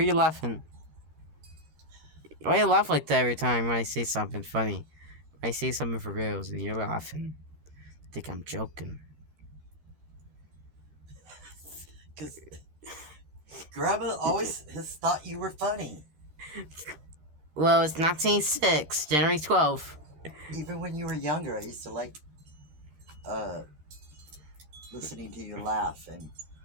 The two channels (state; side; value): late; left; 13 ms